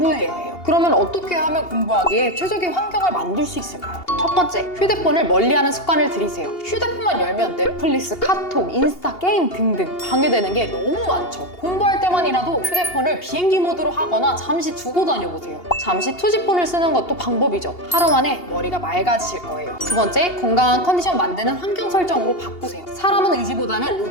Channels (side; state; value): right; late; 2.8 ms